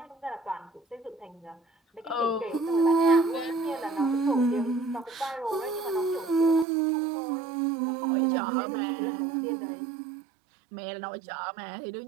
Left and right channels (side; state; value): left; drops out; at 6.7 s